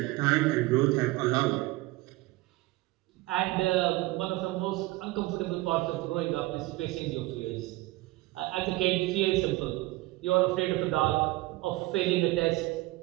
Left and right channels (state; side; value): quieter; left; 19.9 dB